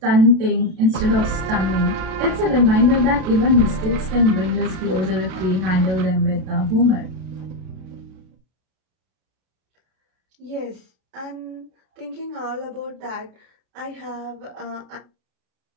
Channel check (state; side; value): late; left; 32 ms